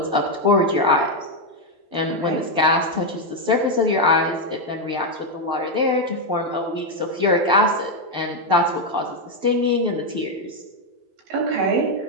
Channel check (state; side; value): late; left; 12 ms